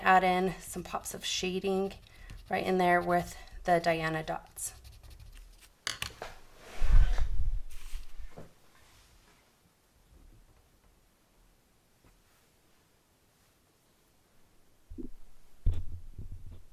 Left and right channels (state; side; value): identical; both; correlation 1.00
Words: add in some pops of shading right in there with the Dianna dots.